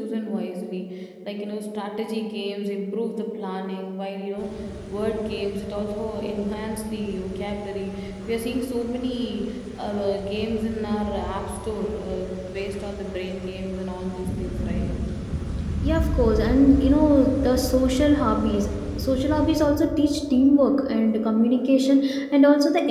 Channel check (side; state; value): both; identical; correlation 1.00